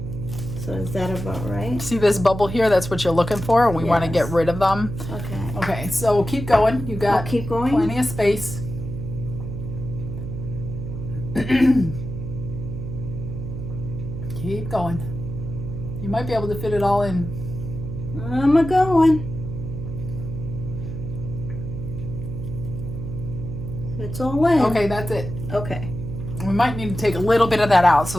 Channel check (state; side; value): noise; right; hum, 7 dB below the sound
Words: So is that about right? See this bubble here? That's what you're looking for. We want to get rid of them. Okay. Okay, so keep going. You got keep going? Plenty of space. Keep going. You might be able to fit it all in. I'm a-going. It's all in. Okay, that's it. Okay. We might need to take a little bit of that out.